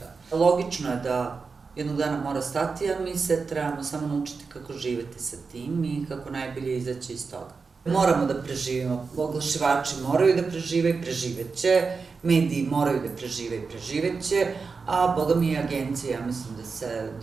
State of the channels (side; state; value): left; quieter; 4.8 dB